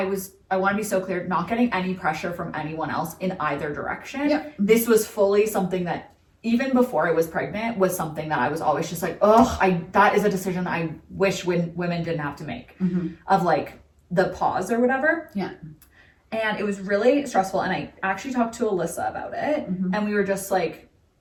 want to be so clear, not getting any pressure from anyone else in either direction. Yep. This was fully something that, even before I was pregnant, was something that I was always just like, that is a decision I wish women didn't have to make, of like the pause or whatever. Yeah. And it was really stressful. And I actually talked to Alyssa about it. And we were just like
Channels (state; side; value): identical; both; correlation 1.00